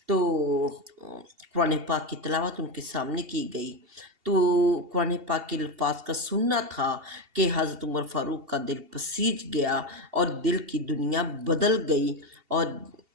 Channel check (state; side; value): late; left; 2.7 ms